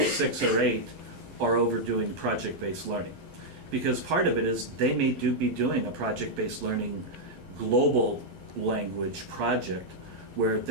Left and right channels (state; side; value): late; left; 12 ms